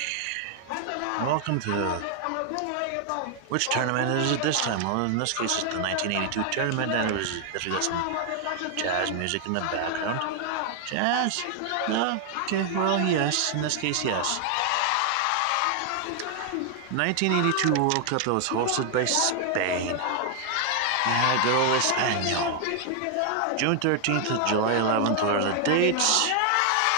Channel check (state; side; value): different; both; correlation 0.00